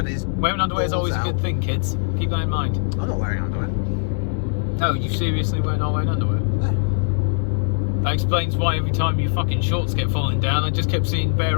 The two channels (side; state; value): right; silent; 65 dB below the other